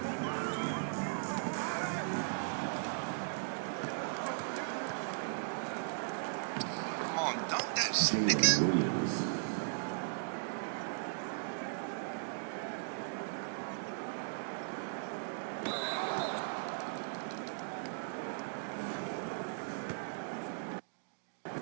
Come on, dunk that shit, nigga. Jalen Williams.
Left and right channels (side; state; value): left; silent; digital silence